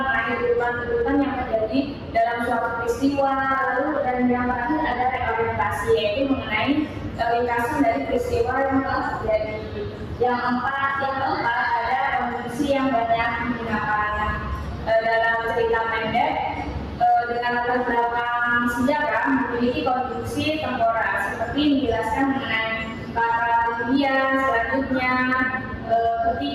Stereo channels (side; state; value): both; identical; correlation 1.00